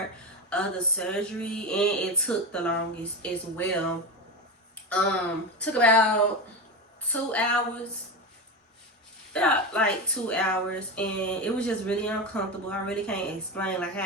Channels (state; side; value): normal; both; correlation 0.20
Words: of the surgery, and it took the longest as well. Took about 2 hours, about like 2 hours, and it was just really uncomfortable. I really can't explain like